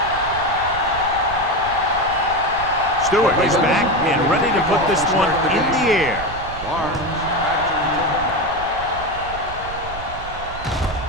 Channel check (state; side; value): noise; right; rumble, 13 dB below the sound